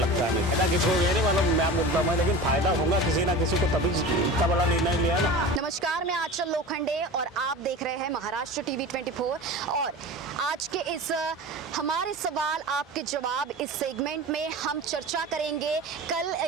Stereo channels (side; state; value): both; normal; correlation 0.33